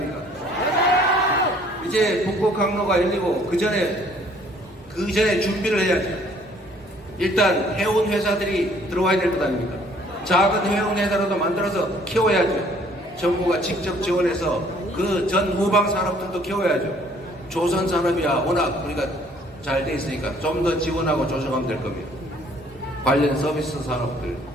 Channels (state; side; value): normal; both; correlation 0.59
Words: 이제 북극 항로가 열리고 그 전에 준비를 해야죠. 일단 해운 회사들이 들어와야 될 것 아닙니까? 작은 해운 회사라도 만들어서 키워야죠. 정부가 직접 지원해서 그 전 후방 산업들도 키워야죠. 조선 산업이야 워낙 우리가 잘 돼 있으니까 좀 더 지원하고 조정하면 될 겁니다. 관련 서비스 산업들